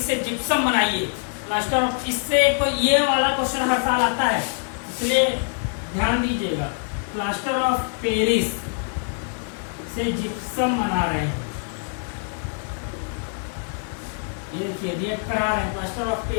से जिप्सम बनाइए, प्लास्टर ऑफ, इससे ये वाला क्वेश्चन हर साल आता है, इसलिए ध्यान दीजिएगा। प्लास्टर ऑफ पेरिस से जिप्सम बना रहे हैं, ये देखिए रिएक्ट करा रहे हैं, प्लास्टर ऑफ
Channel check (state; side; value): silent; right; 56 dB below the other